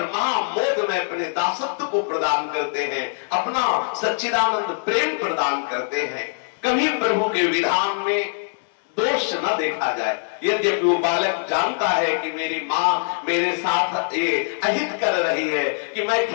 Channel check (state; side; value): silent; right; 64 dB below the other